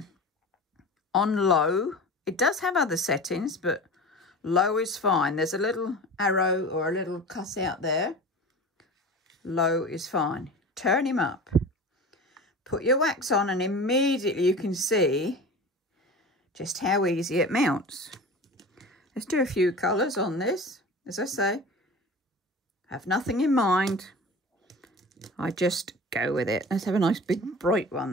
on low. It does have other settings, but low is fine. There's a little arrow or a little cut out there. Low is fine. Turn him up. Put your wax on, and immediately you can see just how easy it mounts. Let's do a few colours on this. As I say, have nothing in mind. I just go with it. Let's have a nice big bright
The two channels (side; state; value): both; normal; correlation 0.35